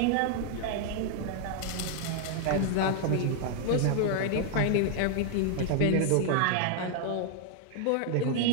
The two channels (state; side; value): different; both; correlation 0.00